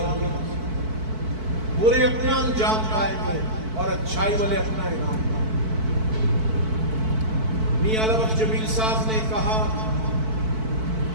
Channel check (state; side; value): late; left; 4.5 ms